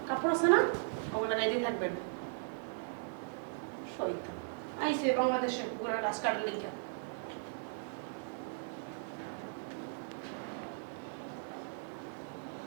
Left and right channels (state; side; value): silent; left; digital silence